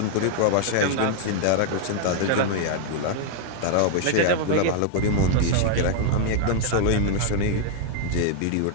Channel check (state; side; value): different; both; correlation 0.00